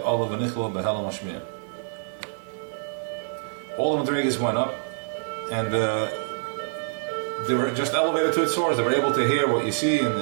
Allah V'nichla B'Helem Hashmir. All the Madreges went up, and they were just elevated to its source. They were able to hear what you see and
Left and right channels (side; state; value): left; silent; digital silence